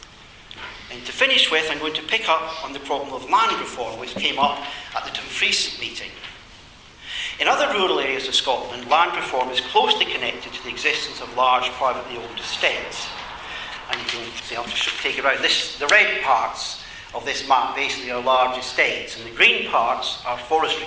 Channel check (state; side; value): identical; both; correlation 1.00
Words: And to finish with, I'm going to pick up on the problem of land reform, which came up at the Dumfries meeting. In other rural areas of Scotland, land reform is closely connected to the existence of large privately owned estates. And you can see, I'll just take it around. The red parts of this map basically are large estates, and the green parts are